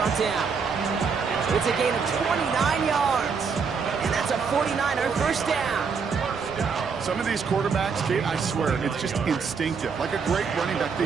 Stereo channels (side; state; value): left; quieter; 5.6 dB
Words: down. It's a gain of 29 yards. And that's a 49er 1st down. Some of these quarterbacks, Kate, I swear, it's just instinctive. Like a great running back,